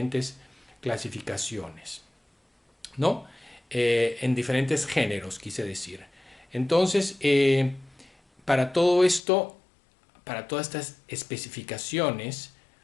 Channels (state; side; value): drops out; right; at 9.2 s